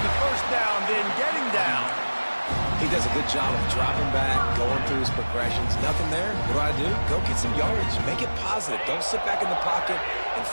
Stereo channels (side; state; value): both; inverted; correlation -1.00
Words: 1st down, then getting down. He does a good job of dropping back, going through his progressions. Nothing there. What do? Go get some yardage. Make it positive. Don't sit back in the pocket and